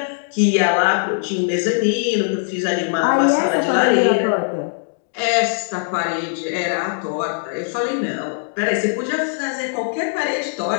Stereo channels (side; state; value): right; silent; digital silence